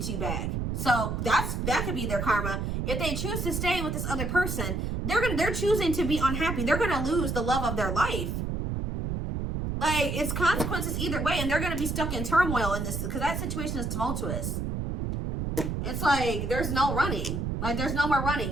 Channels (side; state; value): right; noise; rumble, 2 dB below the sound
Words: you back. So that could be their karma. If they choose to stay with this other person, they're choosing to be unhappy. They're going to lose the love of their life. Like, it's consequences either way, and they're going to be stuck in turmoil in this, because that situation is tumultuous. It's like there's no running. Like, there's no more